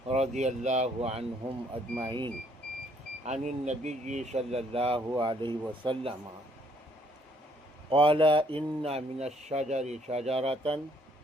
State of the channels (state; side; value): normal; both; correlation 0.65